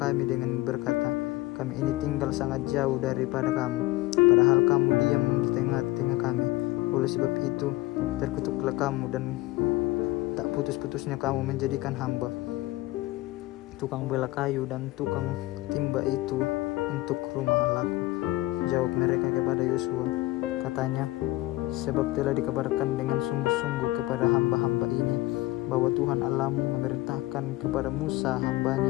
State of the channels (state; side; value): quieter; right; 18.9 dB